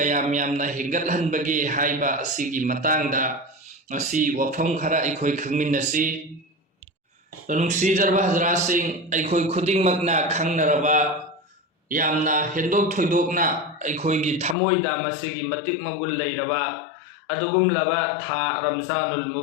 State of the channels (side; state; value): right; drops out; at 14.6 s